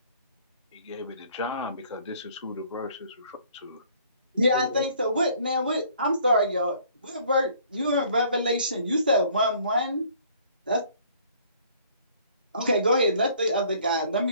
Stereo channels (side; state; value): both; inverted; correlation -0.58